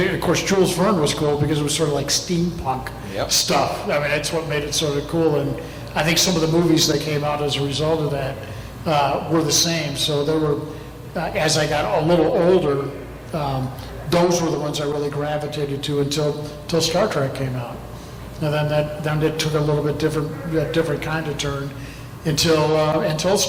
of course, Jules Verne was cool because it was sort of like steampunk stuff. I mean, that's what made it sort of cool, and I think some of the movies that came out as a result of that were the same. So there were, as I got a little older, those were the ones I really gravitated to until Star Trek came out. And then it took a little bit different kind of turn until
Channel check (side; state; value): both; identical; correlation 1.00